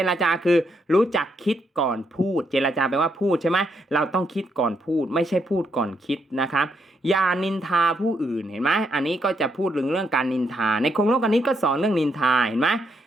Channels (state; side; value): normal; both; correlation 0.77